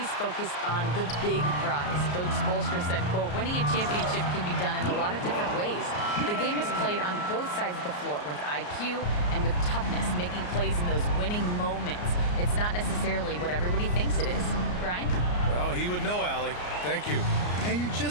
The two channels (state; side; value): late; right; 34 ms